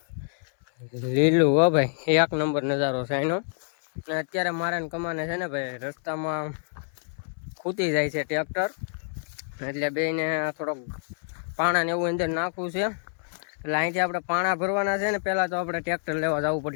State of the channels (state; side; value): silent; right; 60 dB below the other